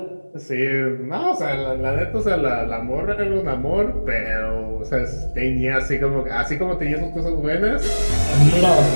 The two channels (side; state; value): both; inverted; correlation -1.00